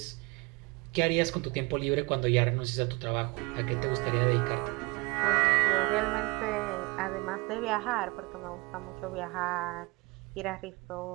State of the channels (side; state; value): left; quieter; 26.4 dB